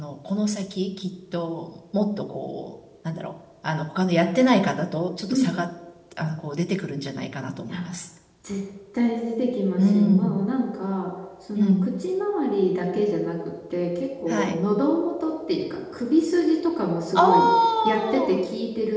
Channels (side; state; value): both; identical; correlation 1.00